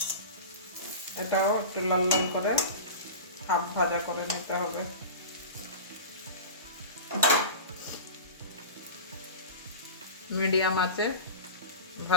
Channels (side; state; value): both; inverted; correlation -0.31